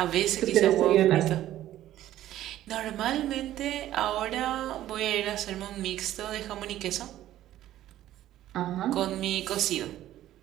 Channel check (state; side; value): quieter; left; 13.4 dB